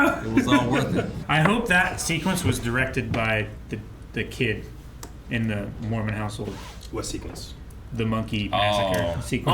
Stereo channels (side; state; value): both; identical; correlation 1.00